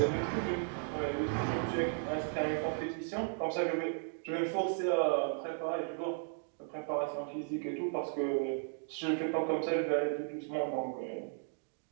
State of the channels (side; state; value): left; silent; 54 dB below the other